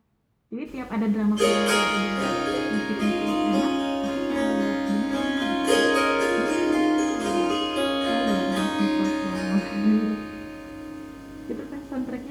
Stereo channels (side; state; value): both; identical; correlation 1.00